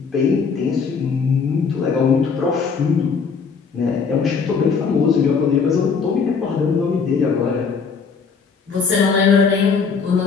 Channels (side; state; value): right; quieter; 5.5 dB